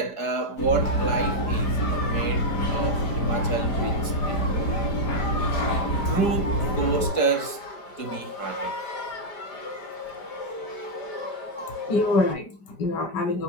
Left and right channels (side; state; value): right; late; 4.9 ms